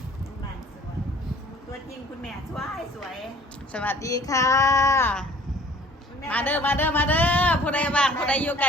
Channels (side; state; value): both; normal; correlation 0.52